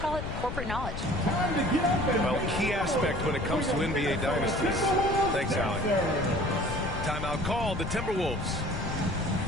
it corporate knowledge. Well, key aspect when it comes to NBA dynasties. Thanks, Allie. Timeout called, the Timberwolves.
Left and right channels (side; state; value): left; noise; rumble, 6 dB below the sound